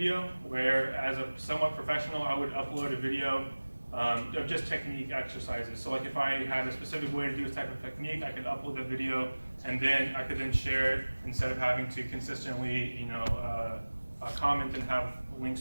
where as a somewhat professional, I would upload a video of just technique exercises. So like if I had a specific way to do this type of technique, I could upload the video and then I could then share it instead of having to consistently comment and have links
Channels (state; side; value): inverted; both; correlation -1.00